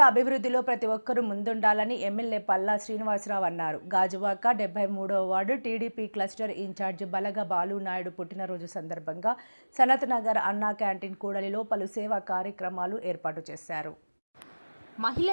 అభివృద్ధిలో ప్రతి ఒక్కరూ ముందుండాలని ఎమ్మెల్యే పల్లా శ్రీనివాసరావు అన్నారు. గాజువాక 73వ ward TDP cluster incharge Balaga Balu Naidu పుట్టినరోజు సందర్భంగా సనత్ నగర్ అన్నా క్యాంటీన్ కూడలిలో పలు సేవా కార్యక్రమాలు ఏర్పాటు చేశారు.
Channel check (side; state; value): both; inverted; correlation -1.00